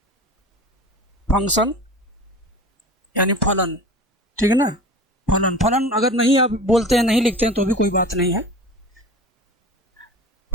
फंक्शन यानी फलन। ठीक है ना, फलन। फलन अगर नहीं आप बोलते हैं, नहीं लिखते हैं तो भी कोई बात नहीं है।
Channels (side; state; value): both; normal; correlation 0.36